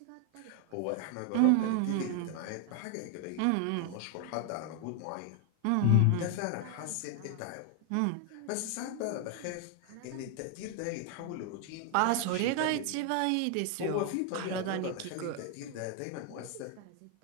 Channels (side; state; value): both; different; correlation 0.00